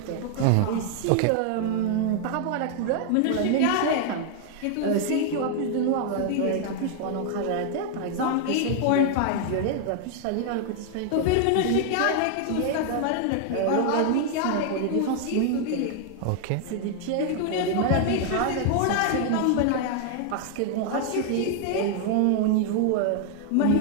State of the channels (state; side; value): different; both; correlation 0.00